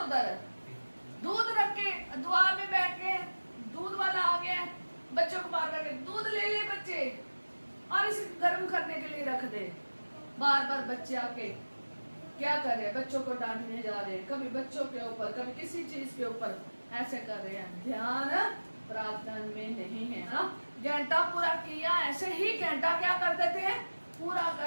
दूध रख के दुआ में बैठ के, दूध वाला आ गया, बच्चों को बार बार दूध ले ले बच्चे और इसे गर्म करने के लिए रख दे। बार बार बच्चे आके क्या कर रहे हैं, बच्चों को डांटने जा रहे हैं, कभी बच्चों के ऊपर कभी किसी चीज के ऊपर ऐसे कर रहे हैं। ध्यान प्रार्थना में नहीं है ना। घंटा पूरा किया, ऐसे ही घंटा क्या कर देते हैं, पूरा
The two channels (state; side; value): inverted; both; correlation -1.00